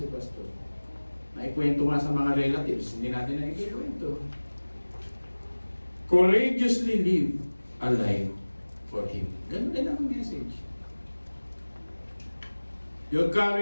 Pastor. Naikwento nga sa mga relatives, hindi natin naikwento. Courageously live a life for Him. Ganun din ang message. Your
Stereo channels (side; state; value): both; inverted; correlation -1.00